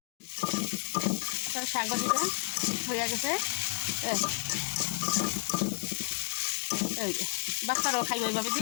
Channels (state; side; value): silent; right; digital silence